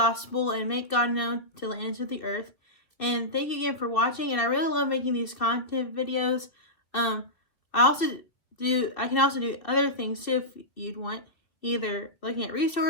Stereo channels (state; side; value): late; right; 2.6 ms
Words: and make God known to the ends of the earth. And thank you again for watching, and I really love making these content videos. I can also do other things too if you'd want, either looking at